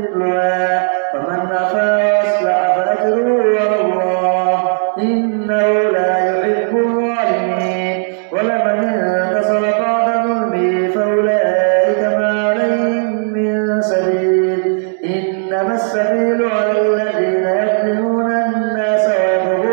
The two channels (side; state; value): left; silent; 70 dB below the other